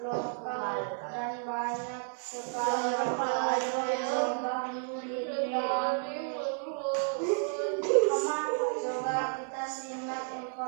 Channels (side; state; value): left; silent; 57 dB below the other